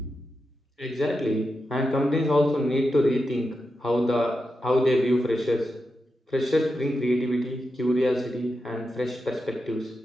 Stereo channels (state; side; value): normal; both; correlation 0.88